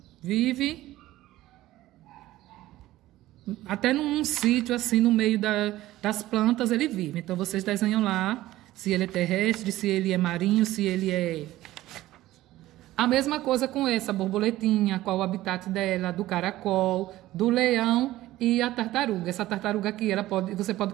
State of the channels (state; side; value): quieter; left; 15.8 dB